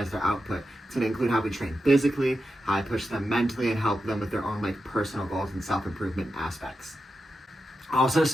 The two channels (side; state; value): both; normal; correlation 0.89